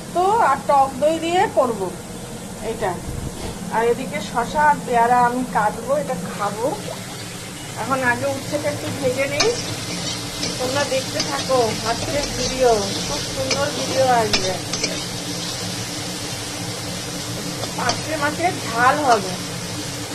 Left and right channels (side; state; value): both; identical; correlation 1.00